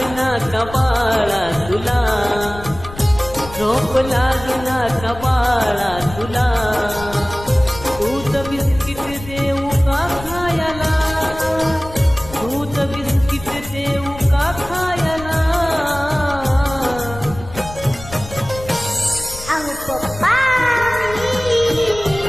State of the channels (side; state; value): left; noise; rumble, 14 dB below the sound